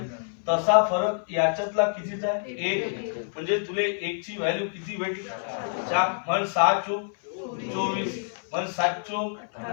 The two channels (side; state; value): right; silent; 60 dB below the other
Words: तसा फरक याच्यातला कितीचा आहे? 1. म्हणजे तुले 1 ची व्हॅल्यू किती भेटली? 4. म्हण 6 चौक 24. म्हण 7 चौक